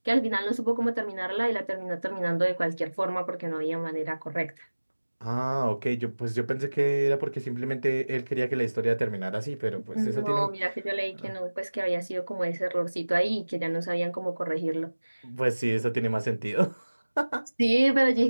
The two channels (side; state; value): both; inverted; correlation -1.00